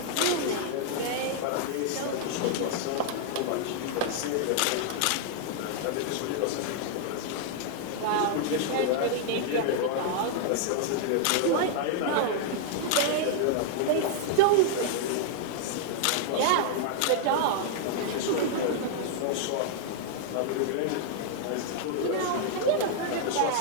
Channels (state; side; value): different; both; correlation -0.01